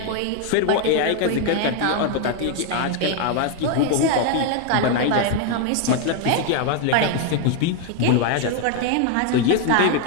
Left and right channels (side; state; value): both; different; correlation 0.01